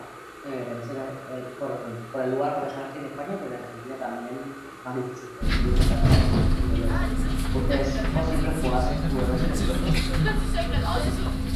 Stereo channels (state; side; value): identical; both; correlation 1.00